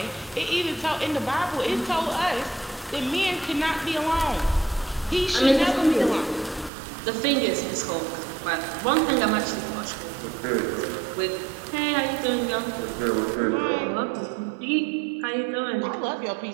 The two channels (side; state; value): left; drops out; at 6.7 s